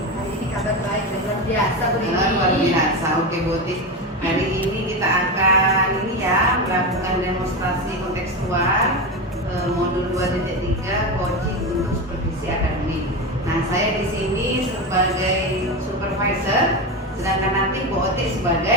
Hari ini kabar baik dan luar biasa Bu Rini. Luar biasa. Oke, Bu Oti. Hari ini kita akan melakukan demonstrasi kontekstual modul 2.3 coaching untuk supervisi akademik. Nah, saya di sini sebagai supervisor, sedangkan nanti Bu Oti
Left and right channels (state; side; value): normal; both; correlation 0.18